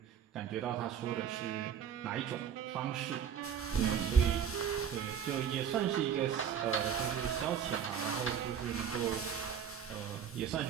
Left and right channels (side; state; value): left; quieter; 8.1 dB